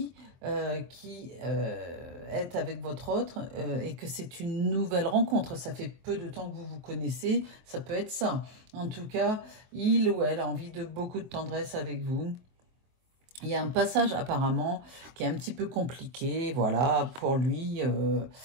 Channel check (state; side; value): late; left; 23 ms